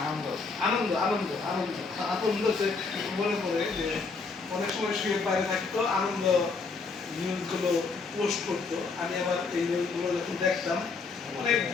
আনন্দ আনন্দ আনন্দ আনন্দ আনন্দ মনে পড়ে যে অনেক সময় শুয়ে বাইরে থাকতো, আনন্দ নিউজগুলো পোস্ট করতো। আমি আবার এই নিউজগুলো যখন দেখতাম অনেক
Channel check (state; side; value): quieter; right; 4.5 dB